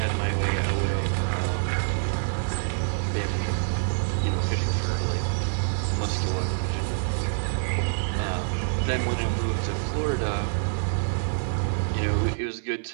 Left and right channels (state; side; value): silent; left; digital silence